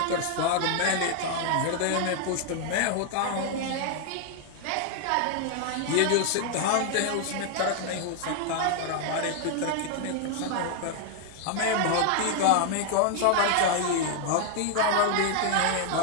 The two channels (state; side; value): different; both; correlation 0.00